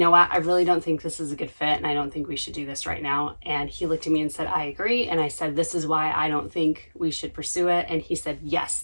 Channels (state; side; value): inverted; both; correlation -1.00